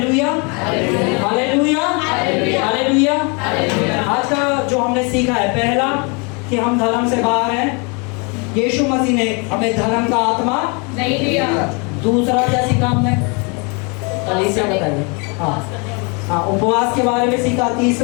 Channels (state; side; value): quieter; right; 32.3 dB